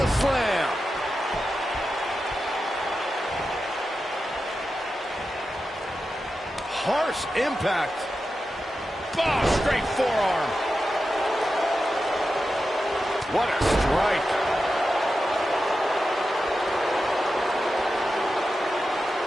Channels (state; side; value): normal; both; correlation 0.91